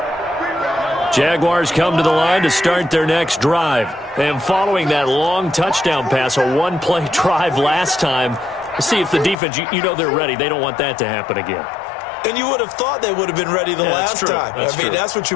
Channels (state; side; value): drops out; right; at 9.3 s